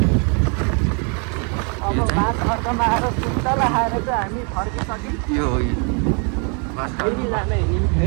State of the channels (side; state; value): left; quieter; 37.9 dB